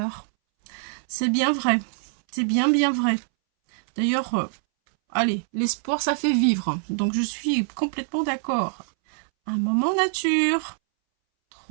C'est bien vrai. C'est bien vrai. D'ailleurs, allez, l'espoir, ça fait vivre. Donc, je suis complètement d'accord. Un moment nature.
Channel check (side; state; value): left; silent; 62 dB below the other